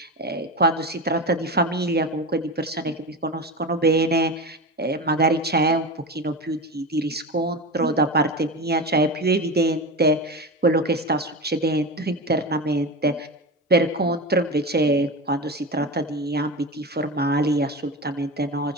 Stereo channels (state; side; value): normal; both; correlation 0.24